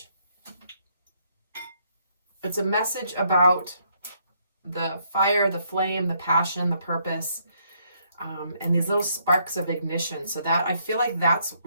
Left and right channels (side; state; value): both; inverted; correlation -0.71